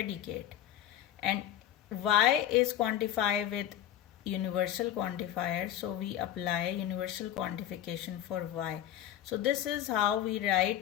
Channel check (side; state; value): right; quieter; 11.5 dB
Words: and y is quantified with universal quantifier, so we apply universal quantification for y. So this is how we